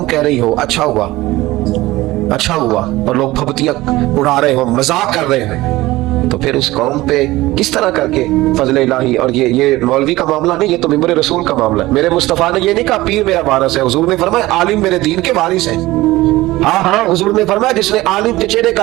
कह रही हो अच्छा हुआ अच्छा हुआ, और लोग फबतियां उड़ा रहे हो, मजाक कर रहे हैं, तो फिर उस कौम पे किस तरह करके फजल इलाही। और ये मौलवी का मामला नहीं, ये तो मिंबर रसूल का मामला है। मेरे मुस्तफा ने ये नहीं कहा पीर मेरा वारिस है, हुजूर ने फरमाया आलिम मेरे दीन के वारिस है। हाँ हाँ, हुजूर ने फरमाया जिसने आलिम के चेहरे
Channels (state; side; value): quieter; left; 18.4 dB